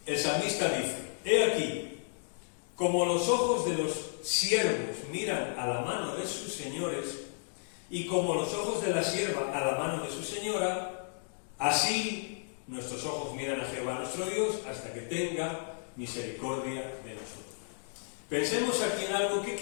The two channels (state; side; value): silent; right; digital silence